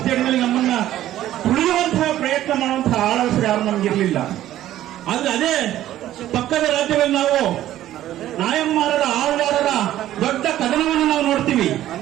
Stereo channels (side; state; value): left; quieter; 13.2 dB